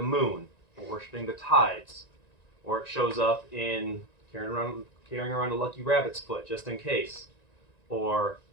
moon, or worshiping the tides, or it shows up in carrying around a lucky rabbit's foot just in case, or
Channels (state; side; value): late; right; 1.9 ms